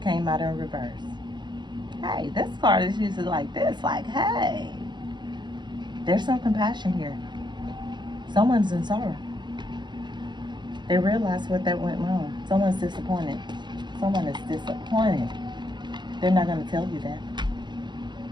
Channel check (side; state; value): left; late; 0.22 ms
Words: came out in reverse. Hey, this card is usually like this. Like, hey, there's some compassion here. Someone's in sorrow. They realize what that went wrong. Someone's disappointed. Someone is disappointed. They're not going to tell you that.